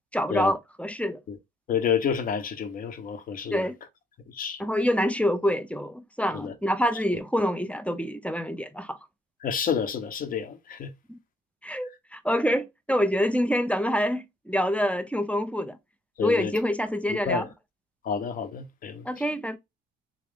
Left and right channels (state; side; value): normal; both; correlation 0.73